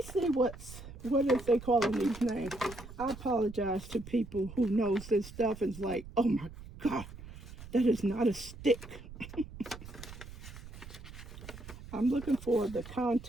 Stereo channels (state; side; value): noise; right; rumble, 14 dB below the sound